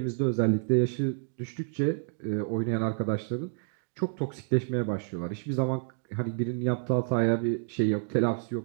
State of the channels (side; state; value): left; silent; digital silence